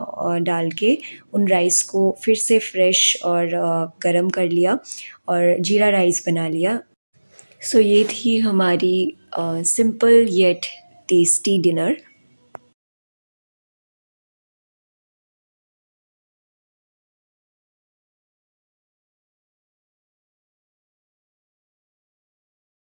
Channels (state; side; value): inverted; both; correlation -1.00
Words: डाल के उन राइस को फिर से फ्रेश और गरम कर लिया और जीरा राइस बना लिया। सो ये थी हमारी simple yet tasty dinner.